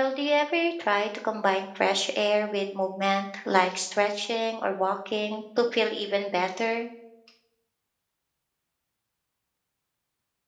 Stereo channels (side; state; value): both; identical; correlation 1.00